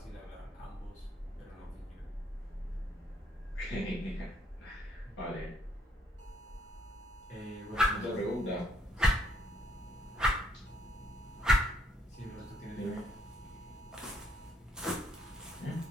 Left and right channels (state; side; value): normal; both; correlation 0.69